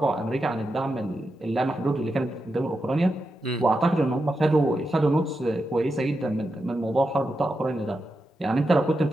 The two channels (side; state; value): both; normal; correlation 0.88